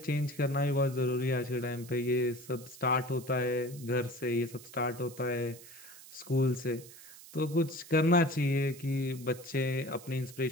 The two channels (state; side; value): noise; right; hiss, 18 dB below the sound